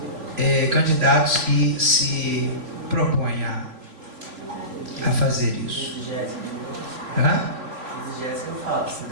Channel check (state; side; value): late; left; 3.2 ms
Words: candidatos que se propõem a fazer isso? Exegese eu falo, se